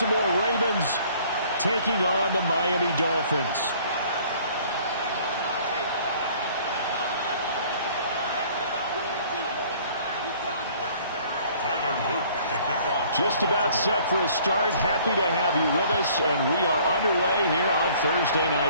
Ravens taking on the Miami Dolphins. Just about set for a start. Happy to have you with us, and we are underway here on Thursday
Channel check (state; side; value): inverted; both; correlation -0.55